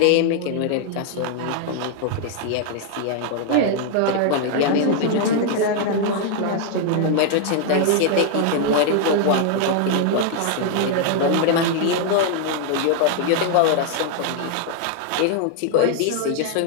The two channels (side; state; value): both; different; correlation 0.00